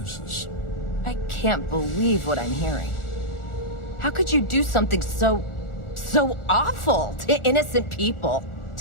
I can't believe what I'm hearing. How could you do something so awful to innocent people,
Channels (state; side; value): late; right; 1.4 ms